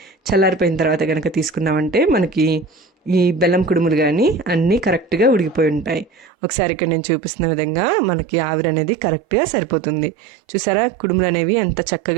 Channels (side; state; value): left; drops out; at 6.2 s